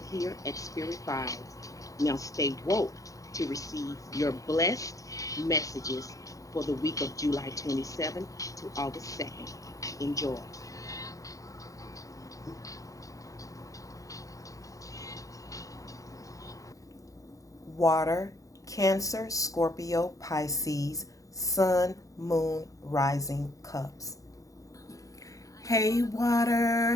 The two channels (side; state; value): right; late; 0.16 ms